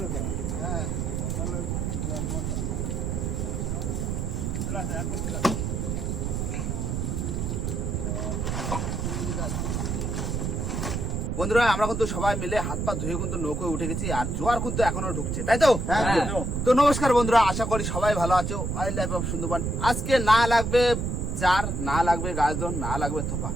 হবে। হ্যাঁ, বন্ধুরা আমরা কিন্তু সবাই মিলে হাত পা ধুয়ে কিন্তু নৌকোয় উঠে গেছি, আর জোয়ার কিন্তু এখনো ঢুকছে, তাই তো? তো নমস্কার বন্ধুরা, আশা করি সবাই ভালো আছো। Wild life of Sundarban. আজকে না লাগবে চার, না লাগবে গাছদন, না লাগবে থোপা,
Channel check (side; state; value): right; noise; rumble, 1 dB below the sound